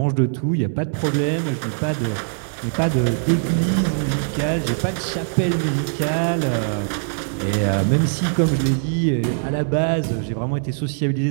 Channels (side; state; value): left; silent; 63 dB below the other